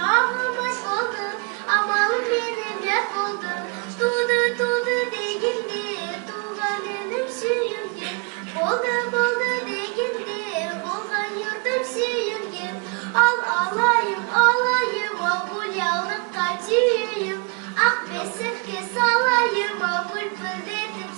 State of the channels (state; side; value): quieter; left; 31.9 dB